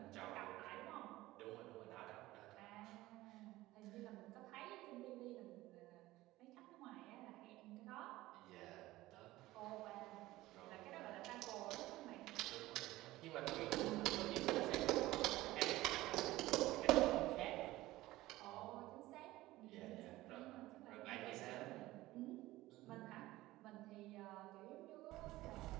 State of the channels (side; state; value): left; quieter; 17.5 dB